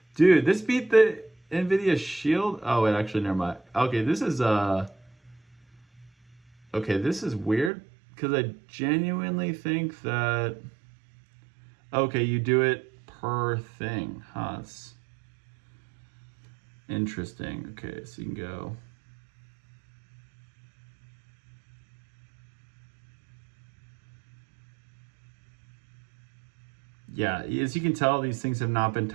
Dude, this beat the NVIDIA Shield. Oh, wait, actually, never mind. Okay, this is okay, this is weird because I genuinely think that okay, you do it per thing. Huh, it's interesting. Okay, so you can go. Yeah, as you can tell, these things have not been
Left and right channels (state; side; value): drops out; left; at 7.7 s